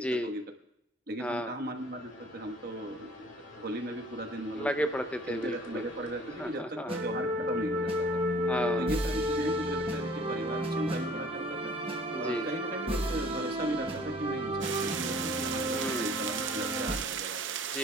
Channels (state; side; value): normal; both; correlation 0.52